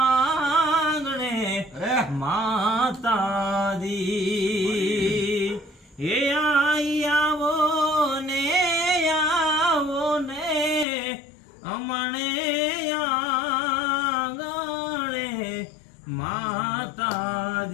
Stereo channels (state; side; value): drops out; right; at 10.9 s